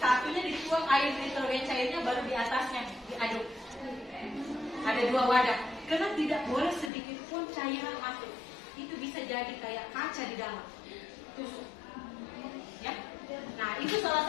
satunya dituang air nitrogen cairnya, baru di atasnya diaduk. Ada 2 wadah, karena tidak boleh sedikit pun cairan masuk. Itu bisa jadi kayak kaca di dalam. Tusuk. Ya. Nah, itu salah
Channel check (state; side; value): drops out; right; at 6.9 s